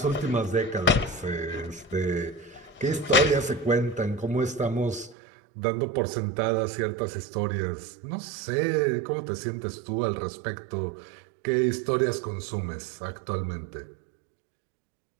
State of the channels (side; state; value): left; drops out; at 5.2 s